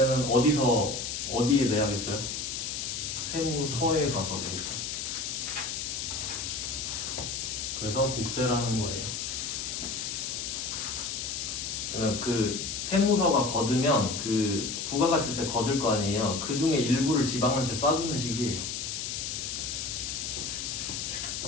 어디에 내야겠어요? 세무서에 가서 내겠죠. 그래서 국세라는 거예요. 그러면 그 세무서가 거두면 그 부가가치세 거둘 거 아니에요. 그 중에 일부를 지방한테 쏴주는 식이에요.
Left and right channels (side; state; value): left; noise; hiss, 4 dB below the sound